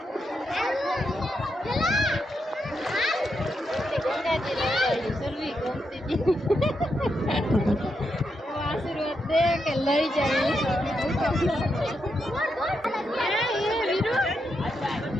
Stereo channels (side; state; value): both; normal; correlation 0.83